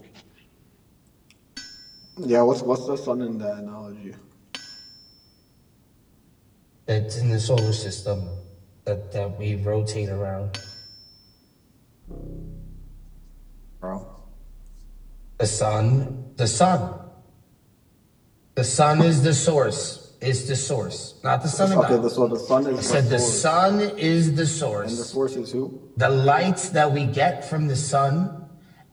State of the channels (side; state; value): both; identical; correlation 1.00